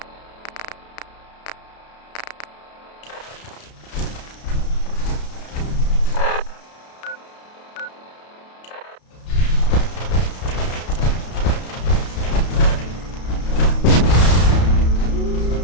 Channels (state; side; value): late; right; 32 ms